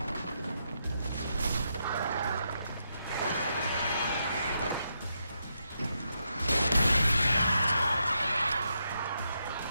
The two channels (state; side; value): inverted; both; correlation -0.82